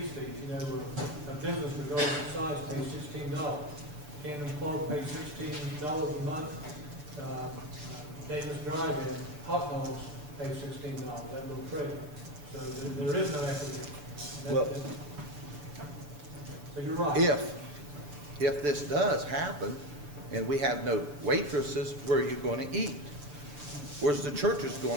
fees. A business regardless of size pays $16. Camden Clark pays $16 a month. Davis Drive-In, hot dogs pay $16, that little trailer. So there is no equity. So you're right. If this does happen and we have no waitresses, where are you going to eat? Where's the churches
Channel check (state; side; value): late; left; 6.7 ms